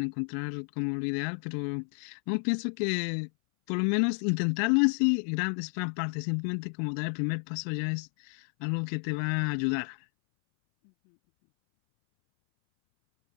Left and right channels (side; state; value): right; silent; 58 dB below the other